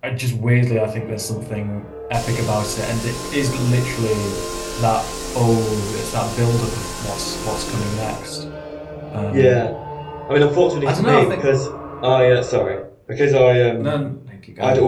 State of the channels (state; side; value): identical; both; correlation 1.00